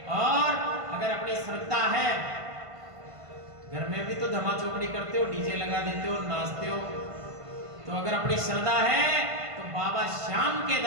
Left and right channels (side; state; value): left; late; 1.5 ms